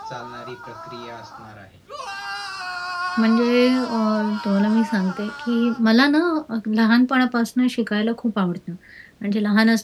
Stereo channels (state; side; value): identical; both; correlation 1.00